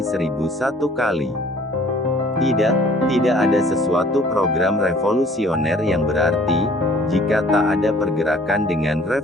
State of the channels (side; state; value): both; normal; correlation 0.55